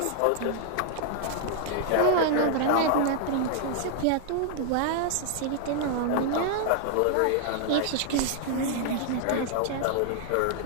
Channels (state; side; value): different; both; correlation 0.00